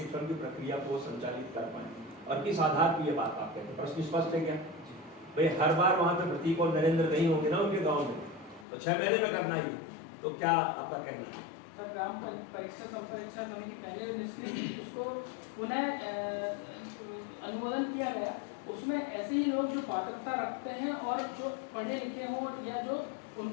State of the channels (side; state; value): right; drops out; at 8.7 s